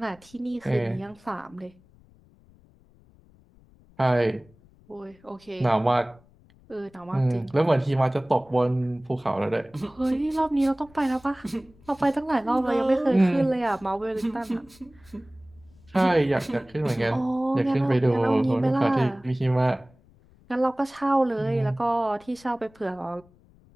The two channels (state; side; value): noise; left; rumble, 28 dB below the sound